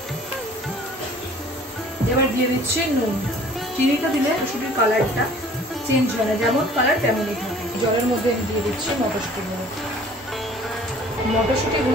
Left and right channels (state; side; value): normal; both; correlation 0.51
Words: এবার দিয়ে দিচ্ছি নুন। চিনিটা দিলে মটরশুঁটির কালারটা চেঞ্জ হয় না, যেমন কালার তেমনই থাকে। জলের মধ্যে আমি দিয়ে দিচ্ছি মটরশুঁটিগুলো।